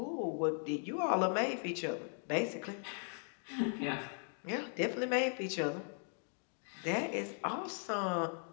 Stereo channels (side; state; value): right; silent; 52 dB below the other